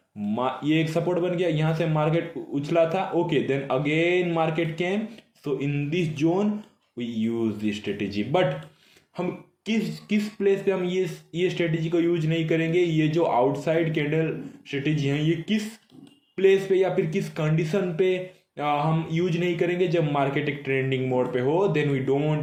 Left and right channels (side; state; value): both; identical; correlation 1.00